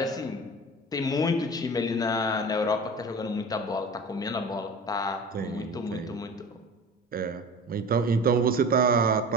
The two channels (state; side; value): normal; both; correlation 0.36